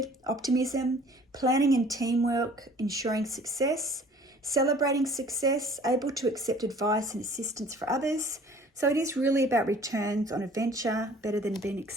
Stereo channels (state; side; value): normal; both; correlation 0.51